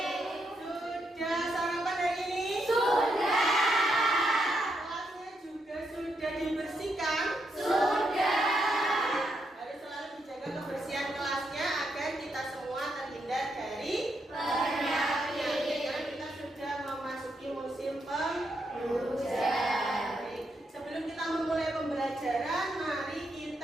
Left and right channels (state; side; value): normal; both; correlation 0.80